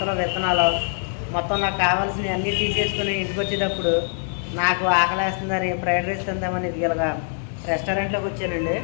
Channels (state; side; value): silent; right; digital silence